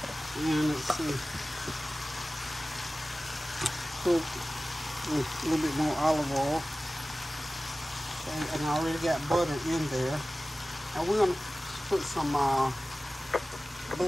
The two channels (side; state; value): both; normal; correlation 0.97